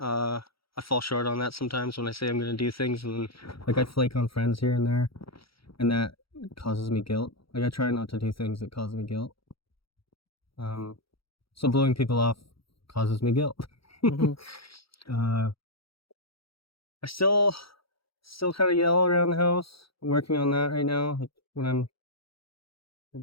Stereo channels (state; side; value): late; right; 0.75 ms